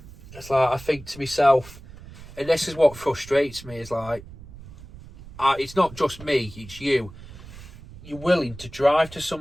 It's like, I think to myself, and this is what frustrates me, is like, it's not just me, it's you. You're willing to drive to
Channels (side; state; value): right; noise; rumble, 17 dB below the sound